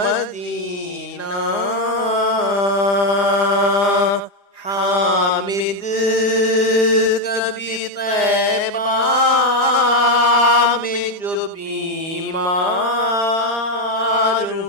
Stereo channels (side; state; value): right; late; 4.9 ms